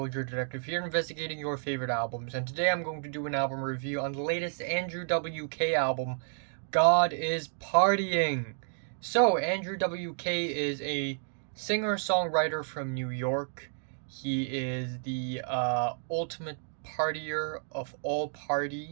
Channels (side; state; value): left; silent; digital silence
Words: Detective here, investigating your favorite albums, and today I'm going to do an album review on the latest Andrew WK album, God is Partying. So, Andrew WK is a singer-songwriter from New York. He is the ultimate partier of all